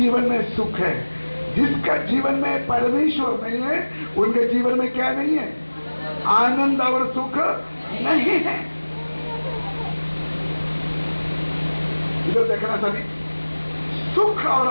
में सुख है। जिसका जीवन में परमेश्वर नहीं है उनके जीवन में क्या नहीं है? आनंद और सुख नहीं है। इधर देखना सभी, सुख और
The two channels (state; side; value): inverted; both; correlation -1.00